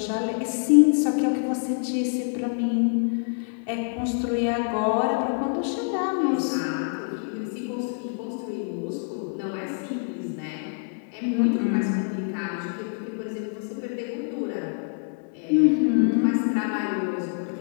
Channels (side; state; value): right; silent; 61 dB below the other